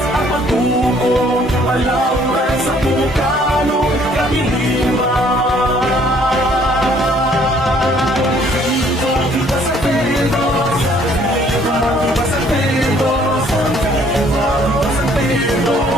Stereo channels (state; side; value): normal; both; correlation 0.61